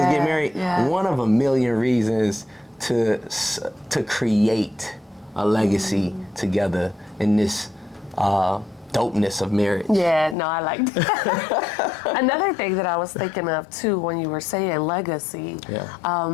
to get married. Yeah. One of a million reasons to create a legacy together in this dopeness of marriage. Yeah, no, I like that. Another thing that I was thinking of too when you were saying legacy,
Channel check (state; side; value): drops out; right; at 10.4 s